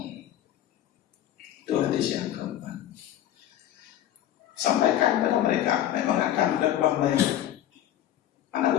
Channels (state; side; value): quieter; right; 12.0 dB